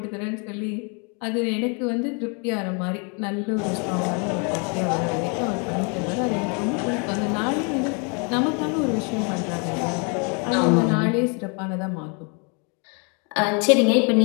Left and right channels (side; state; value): right; quieter; 35.5 dB